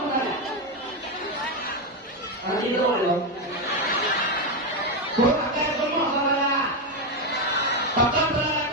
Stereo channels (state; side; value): normal; both; correlation 0.08